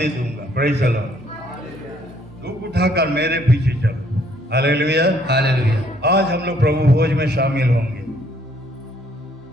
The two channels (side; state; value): both; normal; correlation 0.65